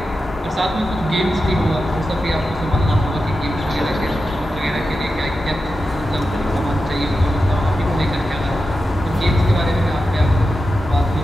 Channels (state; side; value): normal; both; correlation 0.90